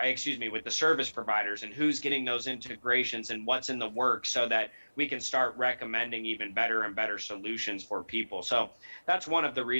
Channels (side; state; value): both; inverted; correlation -1.00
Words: the service providers and who's getting those integrations and what's in the works, so that we can start recommending even better and better solutions for people. So that's one of the